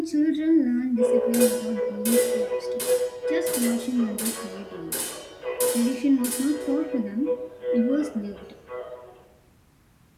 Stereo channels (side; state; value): both; identical; correlation 1.00